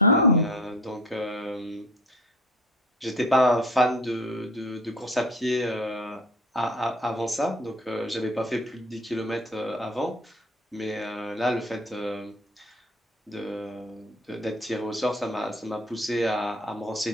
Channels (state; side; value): normal; both; correlation 0.42